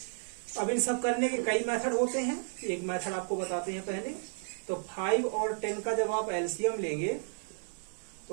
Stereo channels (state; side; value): silent; left; digital silence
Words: अब इन सब करने के कई मेथड होते हैं, एक मेथड आपको बताते हैं पहले। तो 5 और 10 का जब आप एलसीएम लेंगे